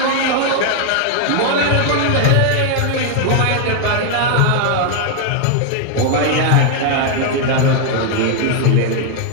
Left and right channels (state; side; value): different; both; correlation 0.00